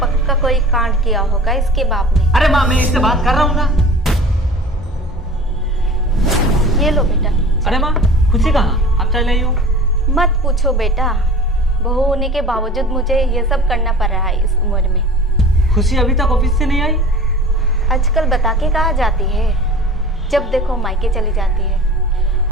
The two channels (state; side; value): normal; both; correlation 0.41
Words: पक्का कोई कांड किया होगा इसके बाप ने। अरे माँ, मैं इससे बात कर रहा हूँ ना। ये लो बेटा। अरे माँ, खुशी कहाँ? आप चले आई हो। मत पूछो बेटा, बहू होने के बावजूद मुझे ये सब करना पड़ रहा है इस उम्र में। खुशी अभी तक ऑफिस से नहीं आई? आजकल बता के कहाँ जाती है, जब देखो मायके चली जाती है।